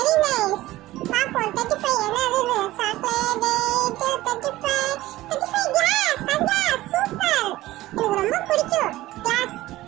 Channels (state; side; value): quieter; left; 16.8 dB